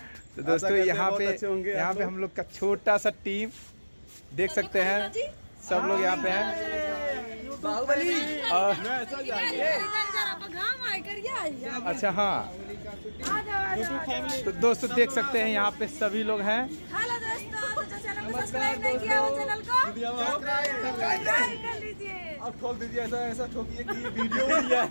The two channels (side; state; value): both; inverted; correlation -1.00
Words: तो दोस्तों यहाँ पे हम लोग का छोटा सा टीम देख सकते हैं, सब लोग यहाँ पे हैं। अच्छा हाँ, तो दोस्तों देख सकते हैं यहाँ पे सभी लोग हैं। हेलो दोस्तों, जो चैनल को सब्सक्राइब नहीं किया वो चैनल को सब्सक्राइब कर लीजिए और खोल दीजिए, ऐसा ठोकिए कि ये वीडियो